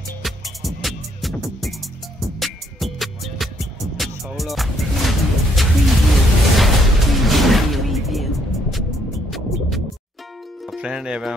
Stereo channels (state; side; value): normal; both; correlation 0.70